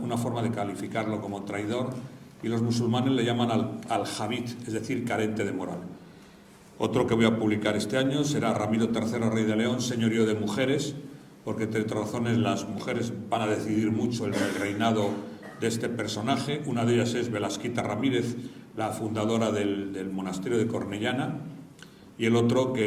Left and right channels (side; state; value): both; identical; correlation 1.00